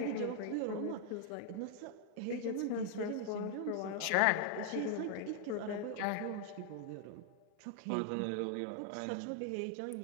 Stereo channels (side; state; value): both; different; correlation 0.00